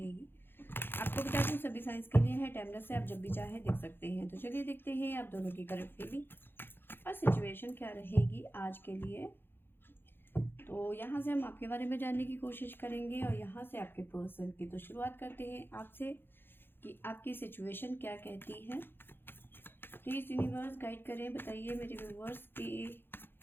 आपको बता दूं सभी साइंस के लिए है, टाइमलेस से आप जब भी चाहे देख सकते हैं। तो चलिए देखते हैं आप दोनों की करंट फीलिंग और सिचुएशन क्या रहेगी आज के लिए। तो यहाँ से हम आपके बारे में जानने की कोशिश करेंगे और यहाँ से आपके पर्सन की। तो शुरुआत करते हैं आपसे कि आपकी सिचुएशन क्या कहती है। प्लीज़ यूनिवर्स गाइड करें, बताइए मेरे व्यूवर्स की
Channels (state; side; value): late; right; 0.10 ms